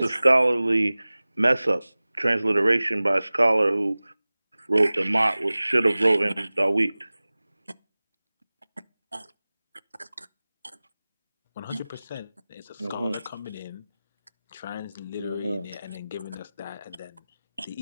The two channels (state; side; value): inverted; both; correlation -0.98